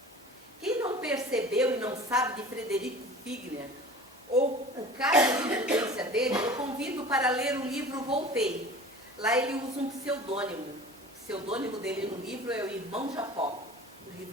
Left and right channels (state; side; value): normal; both; correlation 0.40